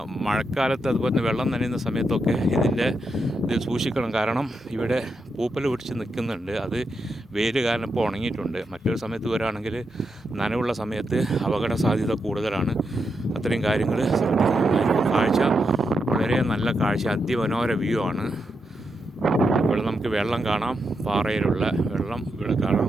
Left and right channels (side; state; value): both; normal; correlation 0.84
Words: മഴക്കാലത്ത്, അതുപോലെ തന്നെ വെള്ളം നനയുന്ന സമയത്തൊക്കെ ഇത് സൂക്ഷിക്കണം. കാരണം ഇവിടെ പൂപ്പൽ പിടിച്ച് നിൽക്കുന്നുണ്ട്. അത് വെയിൽ കാരണം ഇപ്പോൾ ഉണങ്ങിയിട്ടുണ്ട്. മറ്റൊരു സമയത്ത് വരികയാണെങ്കിൽ നനവുള്ള സമയത്ത് അപകട സാധ്യത കൂടുതലാണ്. അത്രയും കാര്യങ്ങൾ കാഴ്ച വളരെ നല്ല കാഴ്ച, അതിമനോഹര വ്യൂ ആണ്. ഇവിടെ നമുക്ക് വെള്ളം കാണാം, പാറയിലുള്ള വെള്ളം ഇവിടെ കാണാം.